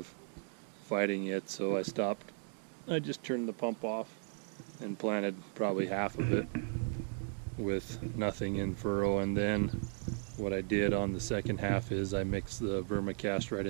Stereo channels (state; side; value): silent; left; 54 dB below the other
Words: fighting it, so I stopped. I just turned the pump off and planted probably half of it with nothing in furrow, and then what I did on the second half is I mixed the vermicast right